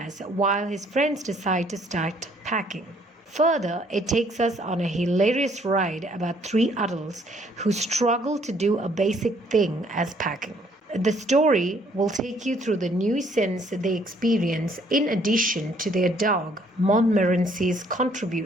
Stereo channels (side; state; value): both; normal; correlation 0.64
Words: while his friends decide to start packing. Further, it takes us on a hilarious ride about three adults who struggle to do a basic thing as packing. The story will take you through the new sense they experience in addition to their dog, Montmorency's